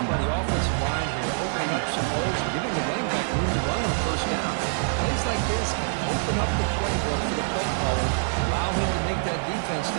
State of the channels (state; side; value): silent; left; digital silence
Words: by the offensive line here, opening up some holes and giving the running back room to run on first down. Plays like this can open up the playbook for the play caller, allow him to make that defense